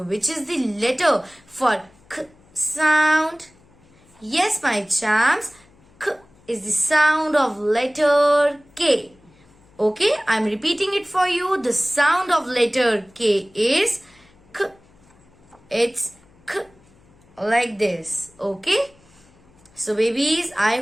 which is the letter for K sound? Yes, my champs. K is the sound of letter K. Okay, I'm repeating it for you. The sound of letter K is K. It's K. Like this. Okay. So babies, I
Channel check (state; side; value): noise; left; hum, 30 dB below the sound